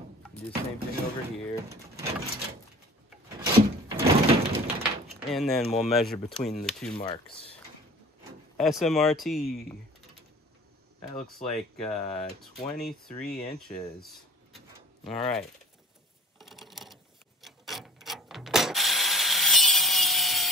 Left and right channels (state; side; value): normal; both; correlation 0.43